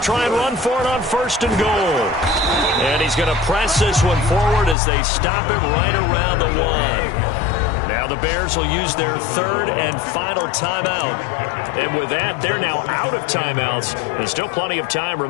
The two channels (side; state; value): right; drops out; at 4.8 s